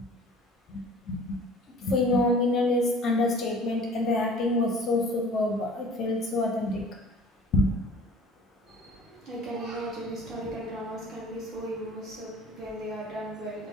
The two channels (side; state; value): both; normal; correlation 0.47